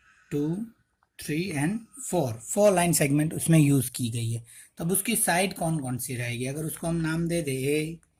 2 3 एंड 4 लाइन सेगमेंट उसमें यूज़ की गई है। तब उसकी साइड कौन कौन सी रहेगी, अगर उसको हम नाम दे दे ए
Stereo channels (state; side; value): identical; both; correlation 1.00